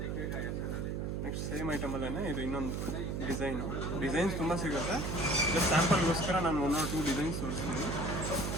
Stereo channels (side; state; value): right; noise; hum, 1 dB below the sound